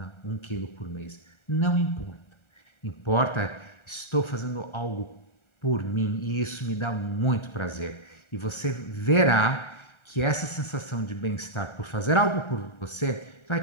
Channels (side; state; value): right; late; 1.4 ms